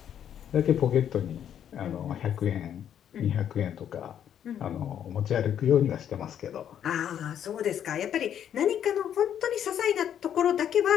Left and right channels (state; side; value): quieter; right; 9.5 dB